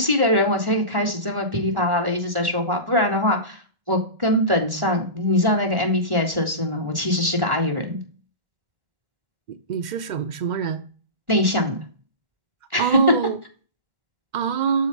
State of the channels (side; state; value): left; late; 1.4 ms